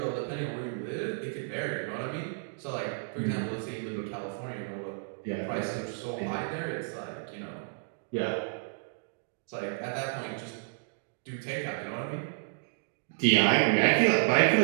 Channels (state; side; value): silent; left; digital silence